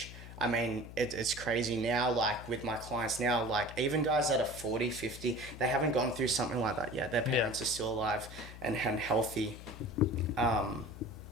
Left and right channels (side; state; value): left; noise; hum, 14 dB below the sound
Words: I mean, it's crazy now, like, with my clients now, like, even guys that are 40, 50, they haven't gone through something like that yet. Their parents are still alive and healthy. But